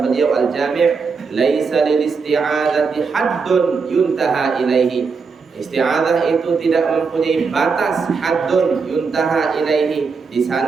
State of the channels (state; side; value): quieter; left; 5.1 dB